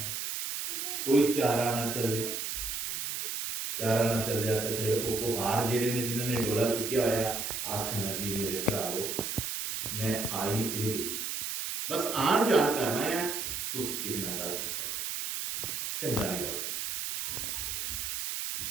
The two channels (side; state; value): right; noise; hiss, 3 dB below the sound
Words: ਕੋਈ ਚਾਰਾ ਨਾ ਚੱਲਿਆ ਤੇ ਫਿਰ ਉਹ ਕੁਹਾਰ ਜਿਹੜੇ ਨੇ ਜਿਨ੍ਹਾਂ ਨੇ ਡੋਲਾ ਚੁੱਕਿਆ ਹੋਇਆ ਆਖਣ ਲੱਗੀ, ਮੇਰੇ ਭਰਾਵੋ ਮੈਂ ਆਈ ਤੇ ਗਈ, ਬਸ ਆਣ ਜਾਣ ਕਰਨਾ ਹੈ, ਤੁਸੀਂ ਕਿਸੇ ਨਾਲ ਗੱਲ ਨਾ ਕਰੋ, ਚੰਗਾ ਨਹੀਂ ਲੱਗਦਾ।